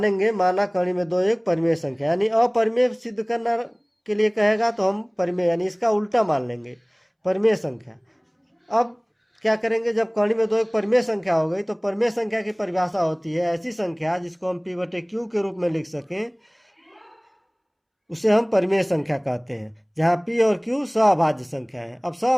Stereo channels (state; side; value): identical; both; correlation 1.00